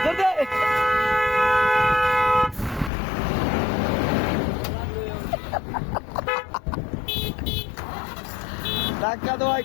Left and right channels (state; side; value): drops out; right; at 2.9 s